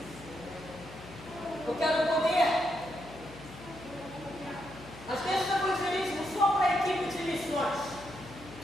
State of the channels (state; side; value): noise; left; hum, 17 dB below the sound